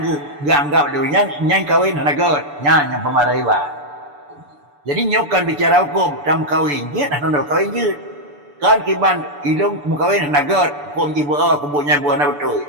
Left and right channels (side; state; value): left; late; 6.9 ms